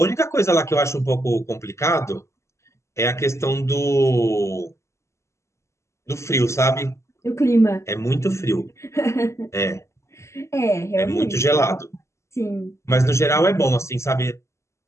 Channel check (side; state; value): right; late; 0.14 ms